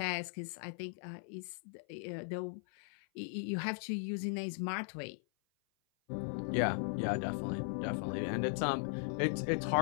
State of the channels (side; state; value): right; silent; 52 dB below the other